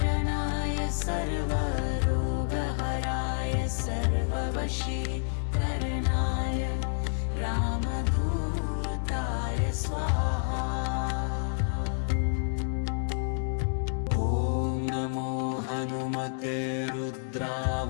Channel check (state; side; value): silent; right; digital silence